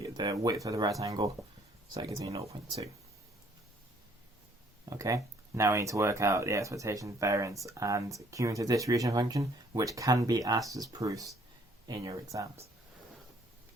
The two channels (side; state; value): both; normal; correlation 0.62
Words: the width of the rectangle, so that gives me 0.2. Okay, now we need to work out the expectation, variance, and cumulative distribution function, which can be asked as proofs in your exams.